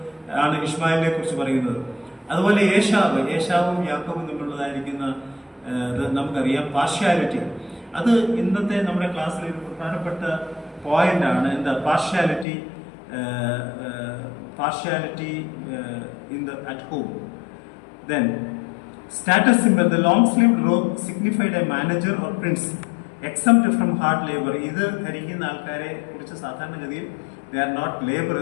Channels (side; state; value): right; drops out; at 12.5 s